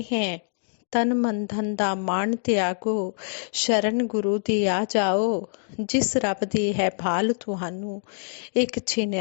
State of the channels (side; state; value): right; silent; digital silence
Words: हैं, तन मन धन दा मान त्यागो, शरण गुरु दी आ जाओ, जिस रब दी है भाल तुहानू एक छिन